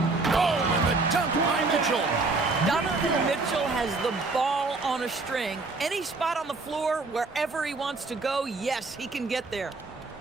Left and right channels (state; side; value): quieter; left; 3.7 dB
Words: and the dunk by Mitchell. Donovan Mitchell has the ball on a string. Any spot on the floor, wherever he wants to go, yes, he can get there.